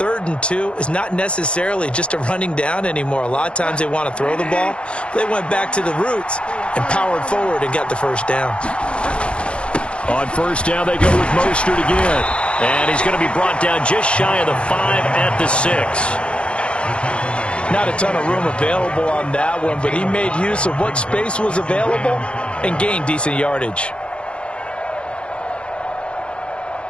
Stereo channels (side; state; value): right; late; 0.058 ms